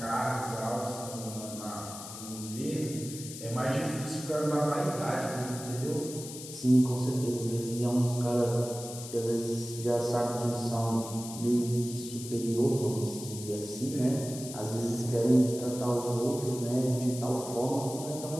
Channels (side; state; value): left; noise; hiss, 11 dB below the sound